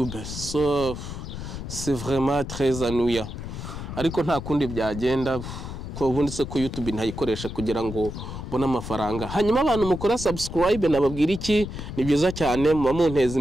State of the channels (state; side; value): noise; left; rumble, 8 dB below the sound